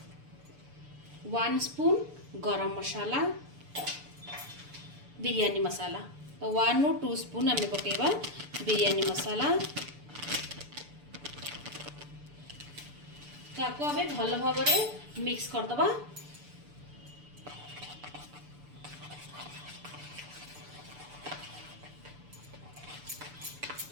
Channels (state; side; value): late; left; 6.9 ms